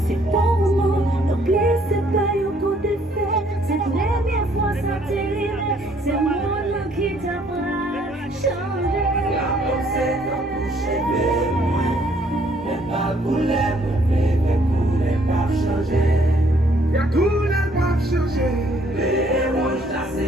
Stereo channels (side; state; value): both; normal; correlation 0.65